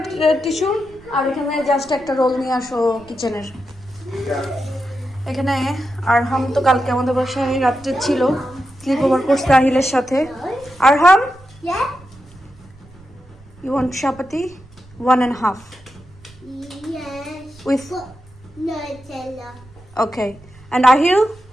টিস্যু। আর এখানে জাস্ট একটা রোল নিয়ে আসো কিচেনের। এখানে আরহাম তো কালকে আমাদের বাসায় রাত্রে ছিল, স্লিপ ওভার করছে আহিলের সাথে। আরহাম, you want chapati 1.5 Yes. with Nutella. okay, and Ahil,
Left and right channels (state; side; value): noise; right; rumble, 24 dB below the sound